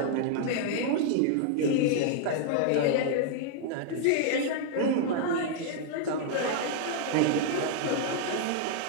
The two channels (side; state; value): both; different; correlation -0.01